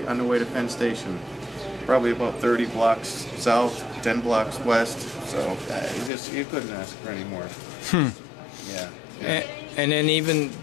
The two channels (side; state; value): right; drops out; at 6.1 s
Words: on the way to Penn Station. Probably about 30 blocks south, 10 blocks west. So you couldn't ask for any more. Yeah. And then even